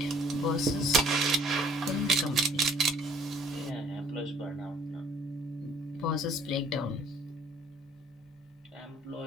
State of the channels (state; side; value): normal; both; correlation 0.59